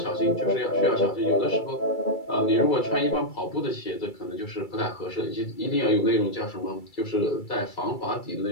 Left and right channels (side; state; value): right; late; 2.3 ms